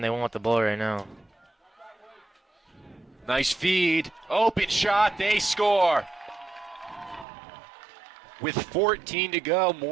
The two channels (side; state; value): left; drops out; at 7.2 s